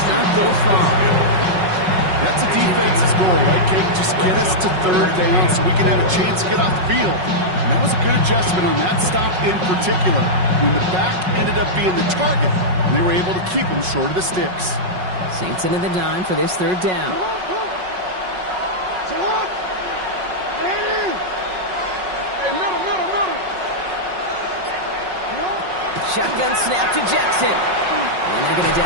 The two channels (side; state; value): left; late; 5.4 ms